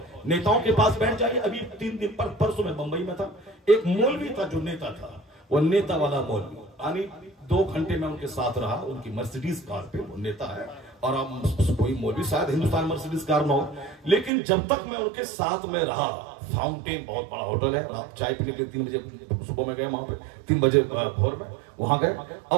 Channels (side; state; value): left; drops out; at 14.3 s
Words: नेताओं के पास बैठ जाइए। अभी 3 दिन परसों में बंबई में था, एक मौलवी था जो नेता था, वो नेता वाला मौलवी, यानी 2 घंटे में उनके साथ रहा, उनकी मर्सिडीज कार पे, वो नेता है और अब कोई मौलवी शायद हिंदुस्तान मर्सिडीज कार में हो, लेकिन जब तक मैं उनके साथ में रहा, फाउंटेन बहुत बड़ा होटल है, आप चाय पीने के लिए 3 बजे सुबह में गए, वहां पे 3 बजे भोर में वहां गए।